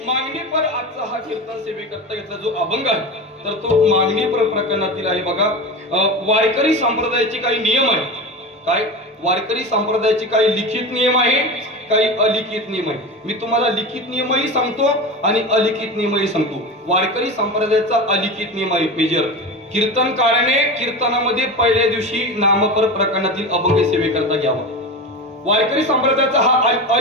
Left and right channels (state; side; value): normal; both; correlation 0.26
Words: मागणीपर आजचा हा कीर्तन सेवेकरता घेतला जो अभंग आहे तर तो मागणीपर प्रकरणातील आहे. बघा, वारकरी संप्रदायाचे काही नियम आहे. काय? वारकरी संप्रदायाचे काही लिखित नियम आहे, काही अलिखित नियम आहे. मी तुम्हाला लिखित नियमही सांगतो आणि अलिखित नियमही सांगतो. वारकरी संप्रदायाचा अलिखित नियम आहे मेजर, कीर्तनकाराने कीर्तनामध्ये पहिल्या दिवशी नामपर प्रकरणातील अभंग सेवेकरता घ्यावा. वारकरी संप्रदायाचा हा